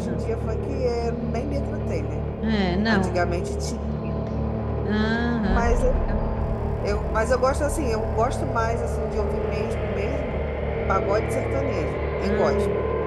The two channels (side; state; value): both; identical; correlation 1.00